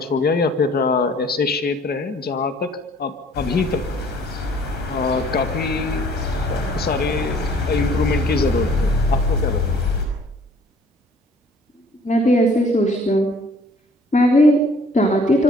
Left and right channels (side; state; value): both; normal; correlation 0.56